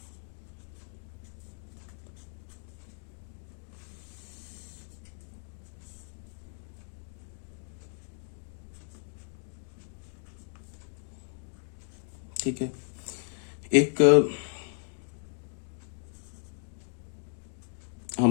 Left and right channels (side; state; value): right; silent; 55 dB below the other